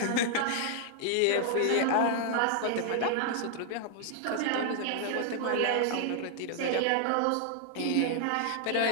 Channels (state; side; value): different; both; correlation -0.01